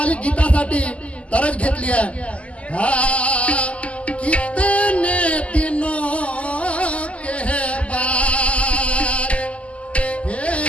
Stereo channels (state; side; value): late; right; 0.063 ms